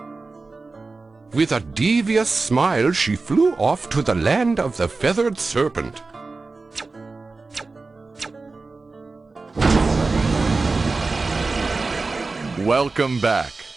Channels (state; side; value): quieter; left; 3.8 dB